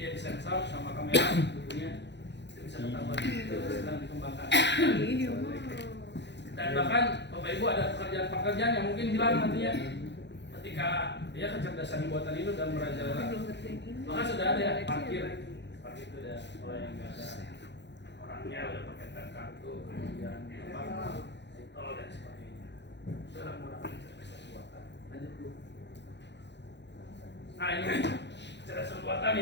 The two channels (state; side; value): late; right; 0.51 ms